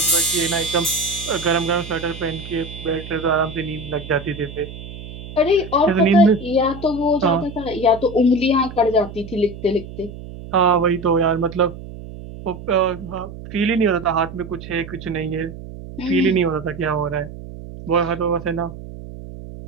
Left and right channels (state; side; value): noise; right; hum, 13 dB below the sound